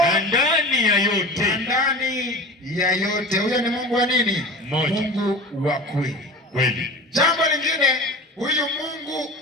ndani ya yote. Huyo ni Mungu wa nini? Mmoja. Mungu wa kweli. Jambo lingine, huyu Mungu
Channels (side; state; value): both; normal; correlation 0.34